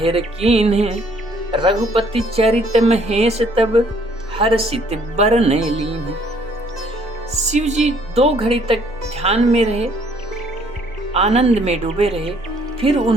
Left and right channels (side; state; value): both; normal; correlation 0.63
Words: कीन्ह। रघुपति चरित महेश तब, हर्षित बरन लीन्ह। शिव जी 2 घड़ी तक ध्यान में रहे, आनंद में डूबे रहे। फिर